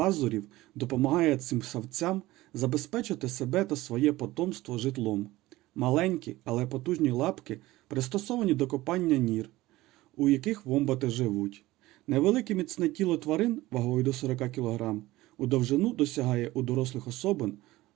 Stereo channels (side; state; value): left; quieter; 17.9 dB